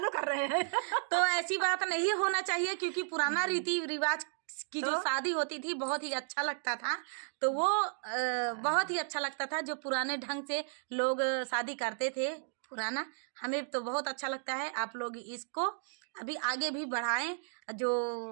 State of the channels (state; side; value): silent; left; digital silence